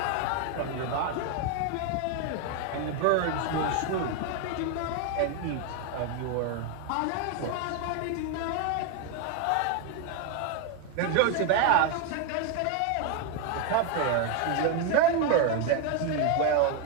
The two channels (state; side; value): different; both; correlation 0.01